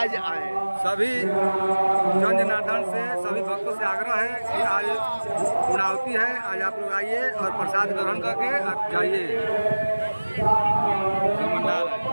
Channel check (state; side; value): inverted; both; correlation -1.00